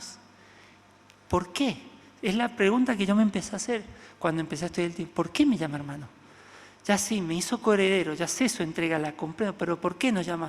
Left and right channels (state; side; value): identical; both; correlation 1.00